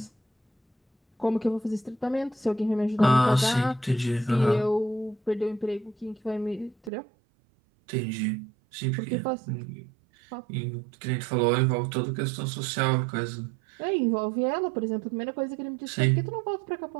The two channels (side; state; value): left; drops out; at 6.9 s